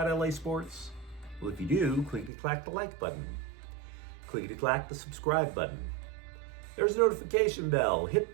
LA sports? Well, if you do, clickety-clack the like button. Clickety-clack the subscribe button. There's a notification bell. Hit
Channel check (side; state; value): left; drops out; at 2.3 s